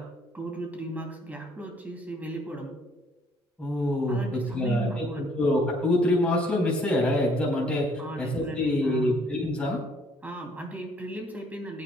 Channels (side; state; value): both; normal; correlation 0.63